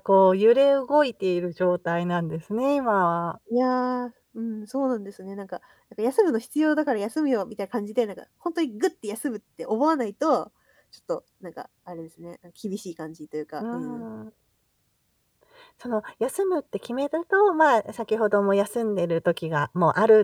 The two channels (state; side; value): identical; both; correlation 1.00